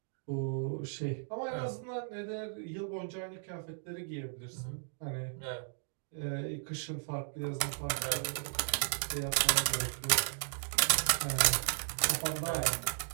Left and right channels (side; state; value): left; silent; digital silence